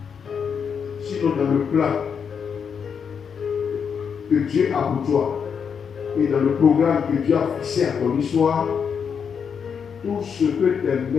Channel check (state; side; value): quieter; right; 6.8 dB